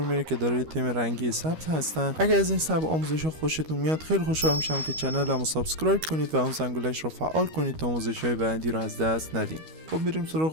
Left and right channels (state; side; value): late; left; 13 ms